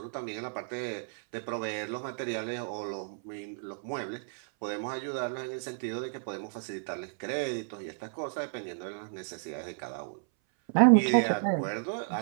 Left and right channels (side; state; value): left; silent; 56 dB below the other